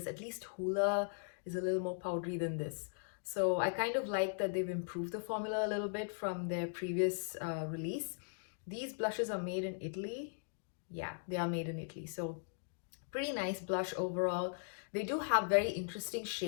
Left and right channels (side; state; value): right; silent; digital silence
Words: At least Hoola is a little more powdery than this. So I kind of like that they've improved the formula a little bit from their previous release. These blushes are made in Italy. Yeah, they are made in Italy. So pretty nice blush overall. They do have very interesting